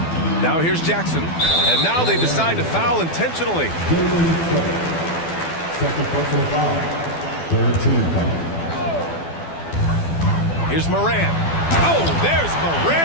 Now here's Jackson, and now they decide to foul intentionally. Second personal foul. 13 foul. Here's Morant. Oh, there's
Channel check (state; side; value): late; right; 12 ms